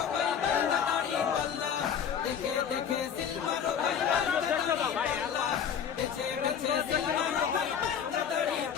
ভাই মার্কা দাড়ি পাল্লা, দেখে দেখে সিলমারো ভাই মার্কা দাড়ি পাল্লা, বেছে বেছে সিলমারো ভাই মার্কা দাড়ি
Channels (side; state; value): right; quieter; 7.9 dB